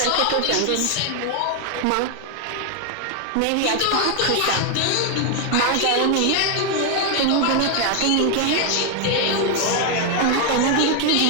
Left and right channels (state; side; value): different; both; correlation 0.01